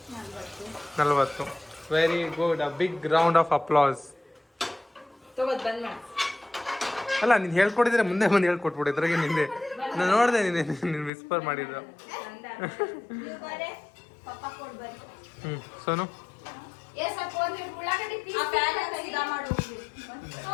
40. Very good. A big round of applause. ಅಲ್ಲ, ನೀನು ಹೇಳ್ಕೊಟ್ಟಿದ್ರೆ ಮುಂದೆ ಬಂದು ಹೇಳ್ಕೊಟ್ಬಿಡು. ಇದ್ರಾಗೆ ನಿಂದೆ ನಾನು ನೋಡಿದೆ, ನೀನು ವಿಸ್ಪರ್ ಮಾಡಿದ್ರು. Sonu,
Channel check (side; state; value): right; drops out; at 11.1 s